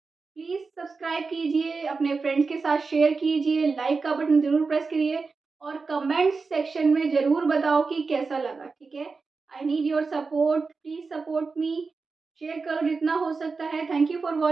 प्लीज सब्सक्राइब कीजिए, अपने फ्रेंड्स के साथ शेयर कीजिए, लाइक का बटन जरूर प्रेस करिए, और कमेंट सेक्शन में जरूर बताओ कि कैसा लगा, ठीक है। I need your support, please support me, share करो जितना हो सकता है। Thank you for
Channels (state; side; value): quieter; left; 4.4 dB